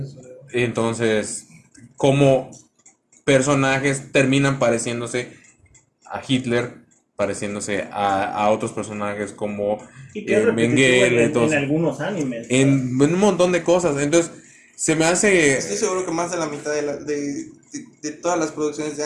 Entonces, como personajes terminan pareciéndose a Hitler, pareciéndose a otros personajes como Y que es repetitivo Mengele, en entonces, algunos animes. en un montón de cosas. Entonces, se me hace... Estoy seguro que más de la mitad de todas las producciones de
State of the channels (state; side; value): identical; both; correlation 1.00